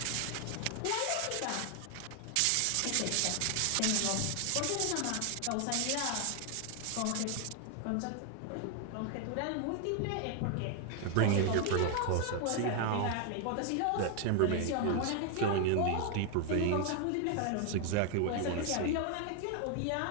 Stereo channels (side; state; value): both; different; correlation 0.00